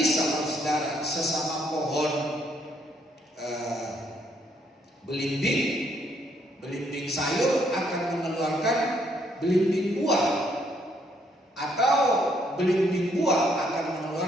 saudara, sesama pohon belimbing sayur akan mengeluarkan belimbing buah, atau belimbing buah akan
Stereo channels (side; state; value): both; normal; correlation 0.70